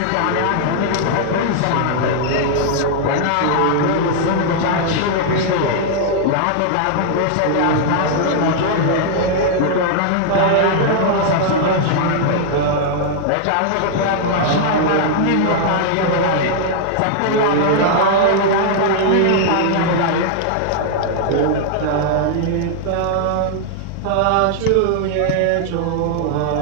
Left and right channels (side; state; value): both; different; correlation -0.01